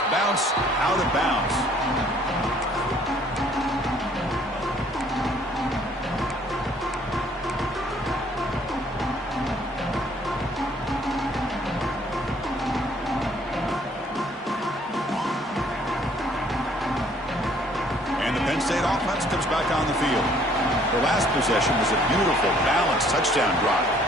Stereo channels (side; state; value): both; normal; correlation 0.60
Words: bounce out of bounds. Penn State offense comes back on the field. Their last possession was a beautiful, balanced touchdown drive.